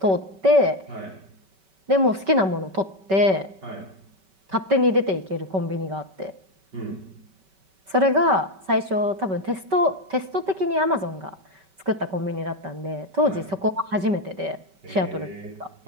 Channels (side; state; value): left; late; 5.2 ms